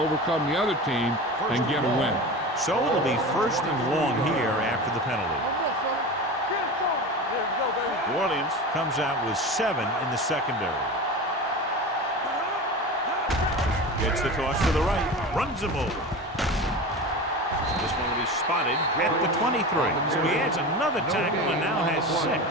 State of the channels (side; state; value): both; normal; correlation 0.29